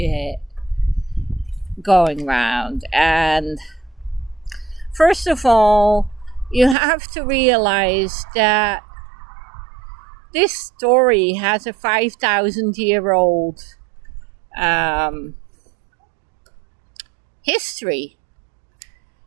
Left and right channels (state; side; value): drops out; left; at 6.8 s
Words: going around. And first of all, you have to realize that this story has a 5,000-year-old history,